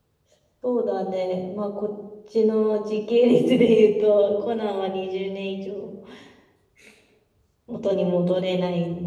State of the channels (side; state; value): both; identical; correlation 1.00